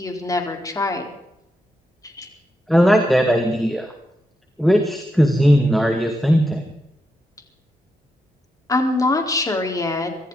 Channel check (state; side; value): normal; both; correlation 0.84